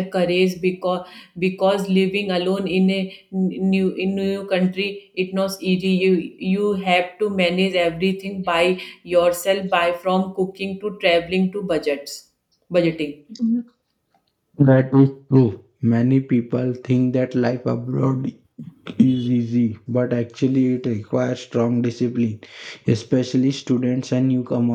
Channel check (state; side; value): identical; both; correlation 1.00